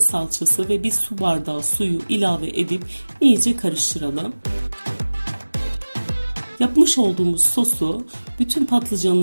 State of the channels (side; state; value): both; inverted; correlation -1.00